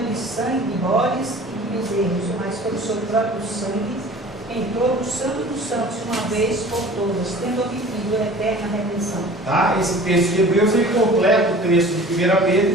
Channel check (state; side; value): normal; both; correlation 0.44